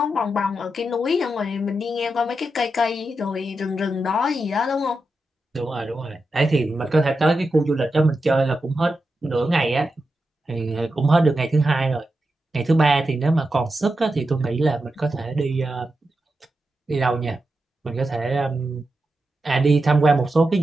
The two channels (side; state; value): both; normal; correlation 0.88